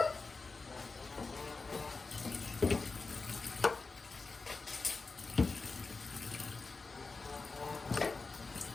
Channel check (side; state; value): right; quieter; 4.1 dB